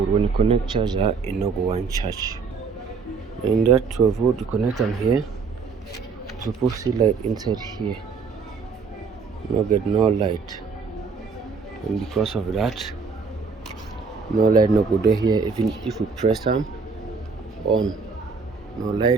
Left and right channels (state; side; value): quieter; left; 5.0 dB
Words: when you connect charger, it no go one charge. In that 12 volt, you connect them here. You supposed to see light inside here. No get no light, and because of that, no light no go there here. Even if we press them on, no